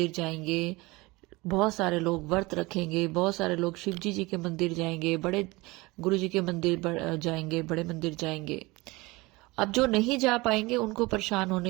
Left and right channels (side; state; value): left; quieter; 22.7 dB